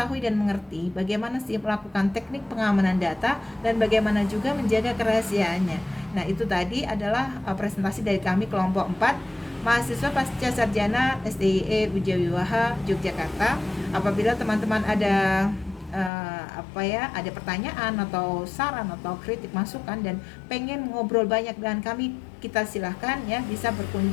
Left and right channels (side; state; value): right; drops out; at 16.1 s